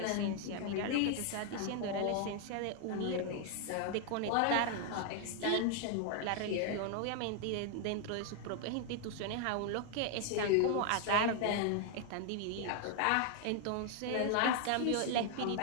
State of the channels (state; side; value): different; both; correlation 0.00